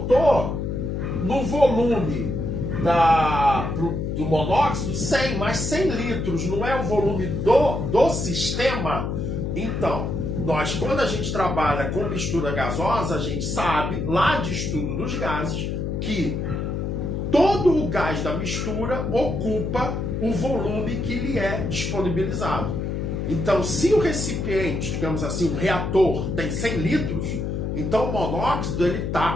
no volume do monóxido 100, mas 100 litros não é o volume do sistema? Então, quando a gente trabalha com mistura gasosa, a gente sabe, lá de estudo dos gases, que todo o gás da mistura ocupa o volume que lhe é disponibilizado. Então, se o recipiente, digamos assim, o reator, tem 100 litros, então o monóxido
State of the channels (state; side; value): noise; left; hum, 2 dB below the sound